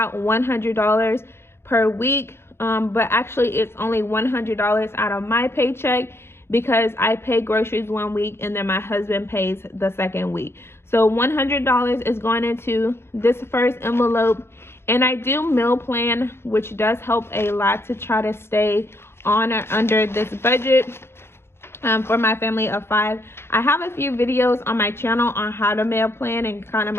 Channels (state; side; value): late; right; 0.12 ms